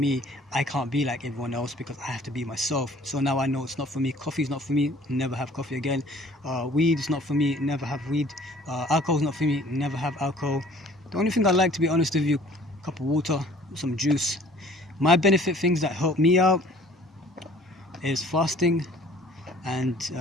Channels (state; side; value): normal; both; correlation 0.53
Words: I can't be like everyone else, because I have to be myself. So now I know it's not for me. Coffee is not for me. Never have coffee again. Weed is not for me. Never have weed. Alcohol is not for me. Never have alcohol. The only thing I like, to be honest with you, a cup of water, some juice. My benefit things that help me out is fasting and